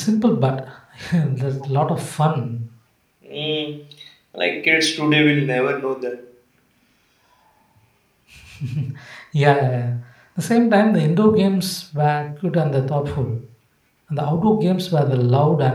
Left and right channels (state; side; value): identical; both; correlation 1.00